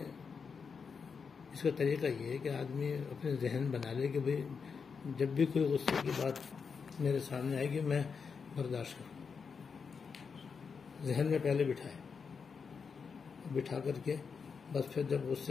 اس کا طریقہ یہ ہے کہ آدمی اپنے ذہن بنا لے کہ بھئی جب بھی کوئی غصے کی بات میرے سامنے آئے گی میں برداشت کروں. ذہن میں پہلے بٹھا کر کے بس پھر جب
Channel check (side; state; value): right; quieter; 5.7 dB